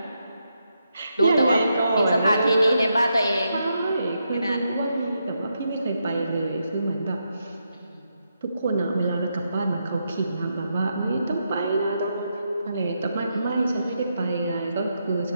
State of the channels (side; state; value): both; inverted; correlation -0.82